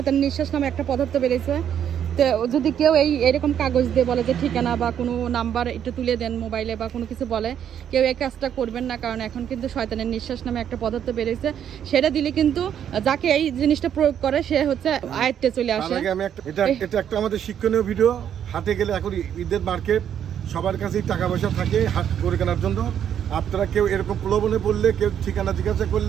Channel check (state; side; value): quieter; left; 9.3 dB